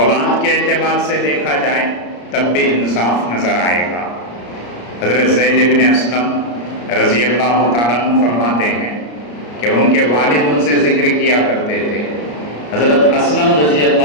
کے اعتبار سے دیکھا جائے تب بھی انصاف نظر آئے گا. حضرت زید بن اسلم رضی اللہ تعالیٰ عنہ فرماتے ہیں کہ ان کے والد ان سے ذکر کیا کرتے تھے. حضرت اسلم رضی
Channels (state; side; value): late; right; 34 ms